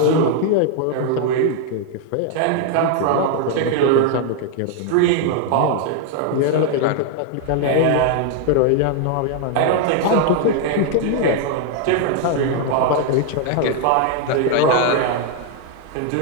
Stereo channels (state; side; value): different; both; correlation 0.00